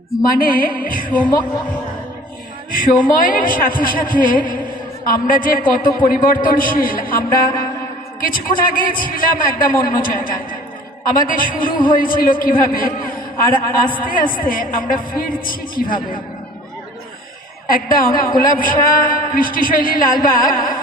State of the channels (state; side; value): normal; both; correlation 0.48